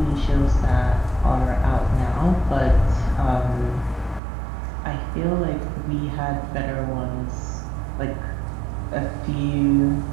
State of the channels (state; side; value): drops out; left; at 4.2 s